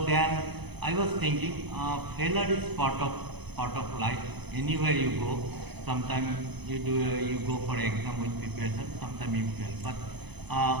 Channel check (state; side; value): late; left; 0.99 ms